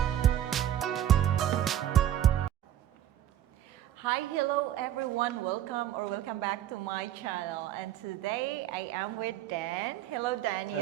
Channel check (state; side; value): quieter; left; 11.4 dB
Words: Hi, hello everyone. Welcome back to my channel. And today I am with Dan. Hello, Daniel.